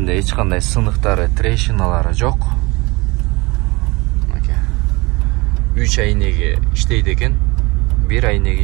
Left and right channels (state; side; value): quieter; left; 24.4 dB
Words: эч кандай сыныктары, трещиналары жок. Мынакей. 3 айнеги иштейт экен, 1 айнеги